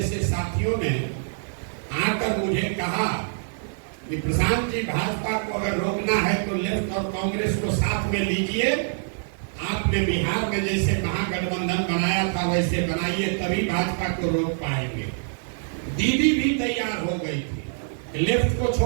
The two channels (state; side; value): silent; left; 60 dB below the other